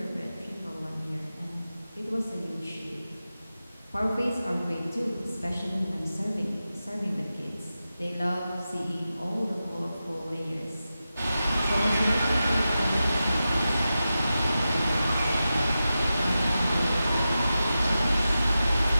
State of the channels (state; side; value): inverted; both; correlation -0.92